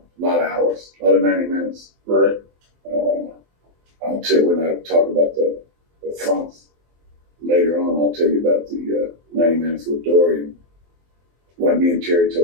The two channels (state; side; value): late; left; 23 ms